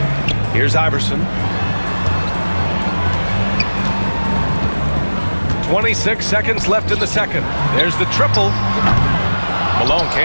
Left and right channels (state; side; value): inverted; both; correlation -1.00